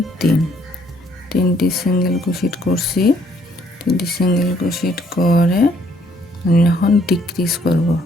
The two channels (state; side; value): normal; both; correlation 0.66